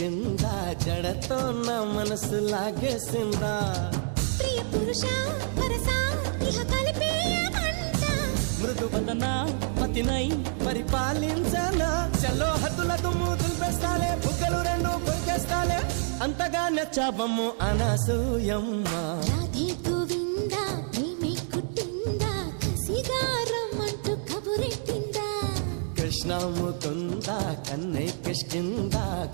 జడతో నా మనసు లాగేసిందా ప్రియ పురుష వరస ఇహ కలిపేయమంట మృదు వదన పతినై పరిపాలించనా చలో హద్దుల దుమ్ము దులిపేస్తాలే బుగ్గలు రెండు కొరికేస్తాలే అంతగా నచ్చాబమ్ము అనసూయమ్మ రాధే గోవింద ప్రేమే కుట్టిందా కసిగా రమ్మంటూ కబురెట్టిందా కృష్ణ ముకుంద కన్నెక్కిష్టిందా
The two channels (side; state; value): left; silent; 60 dB below the other